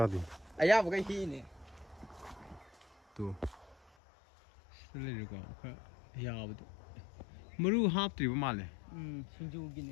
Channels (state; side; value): drops out; right; at 3.9 s